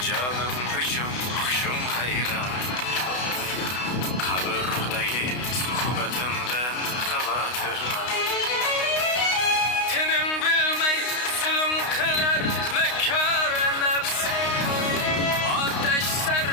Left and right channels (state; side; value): late; right; 32 ms